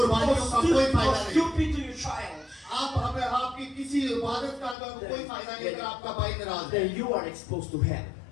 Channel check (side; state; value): right; drops out; at 4.8 s